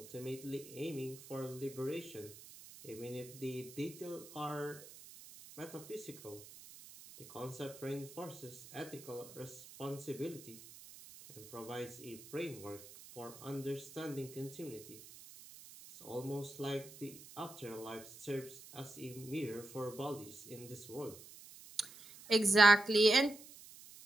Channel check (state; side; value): noise; right; hiss, 17 dB below the sound